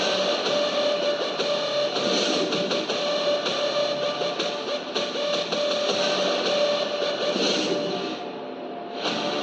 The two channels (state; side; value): identical; both; correlation 1.00